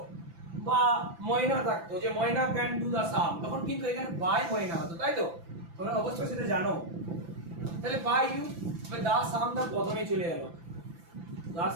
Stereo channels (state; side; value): late; left; 5.9 ms